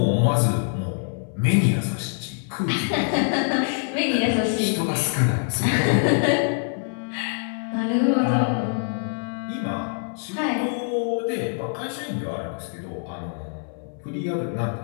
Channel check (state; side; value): silent; right; 62 dB below the other